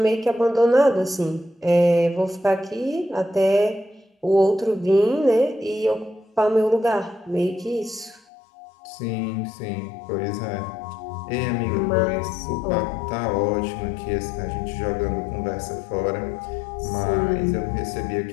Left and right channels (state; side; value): drops out; right; at 8.2 s